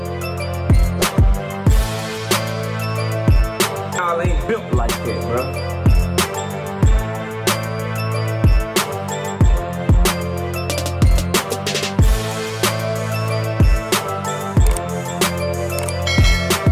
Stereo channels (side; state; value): both; identical; correlation 1.00